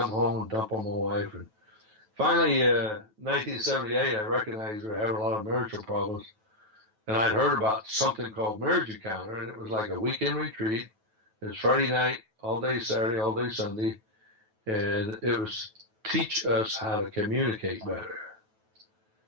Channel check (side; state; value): left; late; 9.2 ms